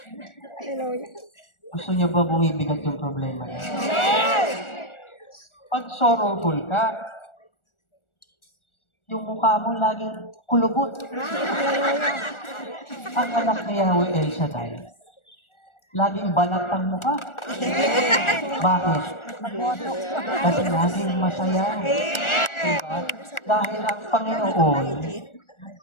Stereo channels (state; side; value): late; right; 1.4 ms